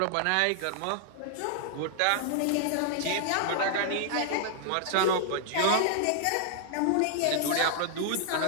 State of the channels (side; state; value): both; different; correlation -0.01